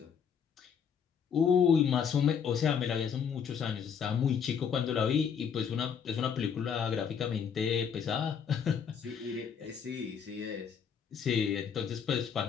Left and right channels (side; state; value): right; quieter; 7.1 dB